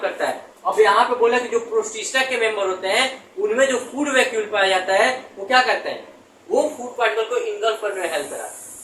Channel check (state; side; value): identical; both; correlation 1.00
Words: करता है, अब यहाँ पे बोला कि जो प्रोटिस्टा के मेंबर होते हैं उनमें जो फूड वैक्यूल पाया जाता है वो क्या करते हैं, वो फूड पार्टिकल को इंगल्फ करने में हेल्प कराता है